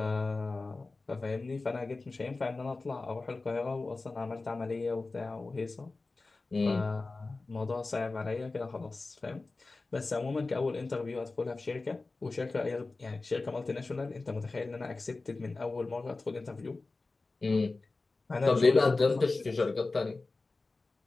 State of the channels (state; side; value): quieter; right; 3.5 dB